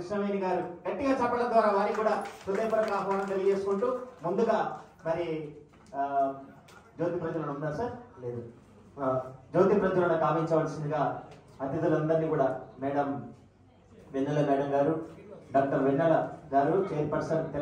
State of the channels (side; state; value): both; identical; correlation 1.00